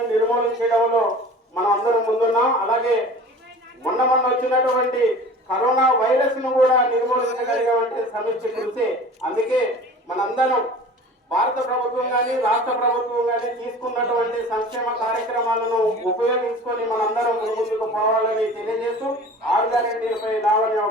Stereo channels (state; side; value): normal; both; correlation 0.41